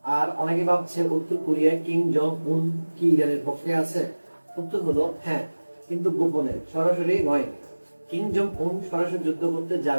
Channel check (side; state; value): both; inverted; correlation -1.00